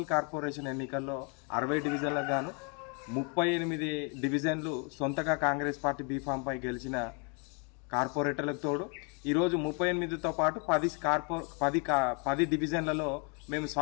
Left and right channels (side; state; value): right; quieter; 36.4 dB